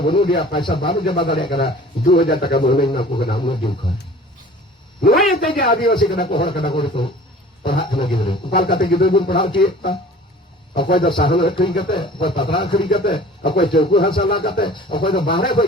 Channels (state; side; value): normal; both; correlation 0.45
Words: dia paisa baru jaba dale kana 2000 taka bonu na ko kana mo din ka noy te je Adivasi kana ko hor kana ko to पढ़ा kana gidro upal kate gidro bun पढ़ाओ chi ta akoy da sahan khri kate akoy patra khri kate akoy chauku hasala kate akoy da bahre koy